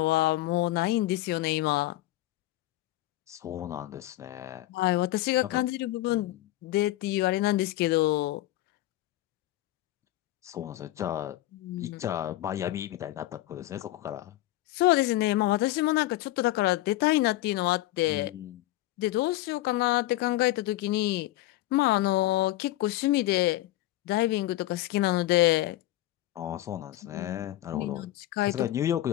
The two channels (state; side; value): quieter; right; 16.0 dB